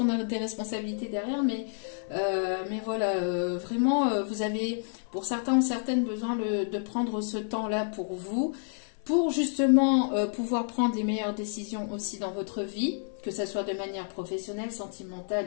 a des responsabilités derrière, mais voilà, vraiment, vous avez, pour certains ou certaines, besoin de prendre ce temps-là pour vous, pour justement pouvoir prendre les meilleures décisions aussi dans votre vie, que ce soit de manière professionnelle, sentimentale,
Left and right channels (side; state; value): right; silent; 58 dB below the other